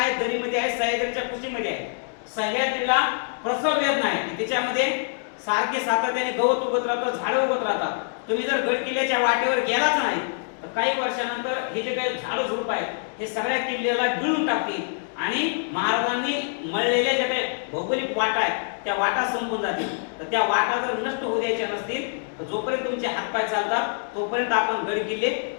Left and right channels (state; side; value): silent; right; 62 dB below the other